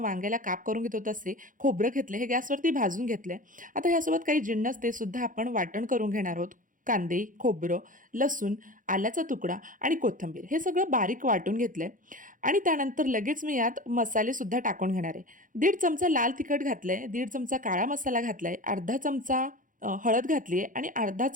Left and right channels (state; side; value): late; left; 0.39 ms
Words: काप करून घेतो तसे. खोबरं घेतले, हे गॅसवरती भाजून घेतले. आता ह्यासोबत काही जिन्नस ते सुद्धा आपण वाटण करून घेणार आहोत. कांदे, खोबरं, लसूण, आल्याचा तुकडा आणि कोथिंबीर हे सगळं बारीक वाटून घेतलंय आणि त्यानंतर लगेच मी यात मसालेसुद्धा टाकून घेणार आहे. 1.5 चमचा लाल तिखट घातलंय, 1.5 चमचा काळा मसाला घातलाय, अर्धा चमचा हळद घातली आहे आणि अर्धा